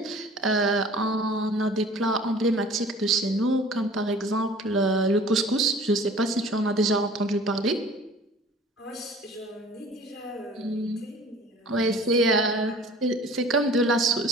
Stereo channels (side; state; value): both; normal; correlation 0.47